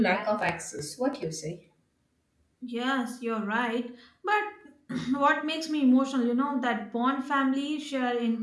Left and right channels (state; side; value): identical; both; correlation 1.00